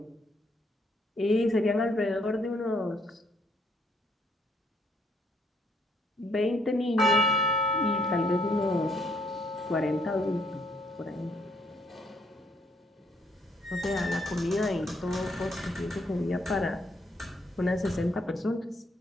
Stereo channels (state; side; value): normal; both; correlation 0.70